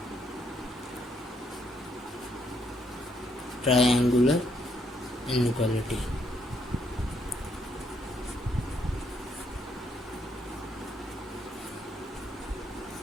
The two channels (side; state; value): both; normal; correlation 0.73